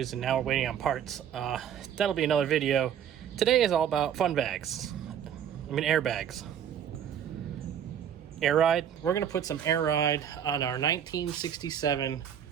and now we're waiting on parts. That'll be another video. Today is all about fun bags. Airbags. Air ride. We're going to put some air ride on our 1967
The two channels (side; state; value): left; quieter; 9.1 dB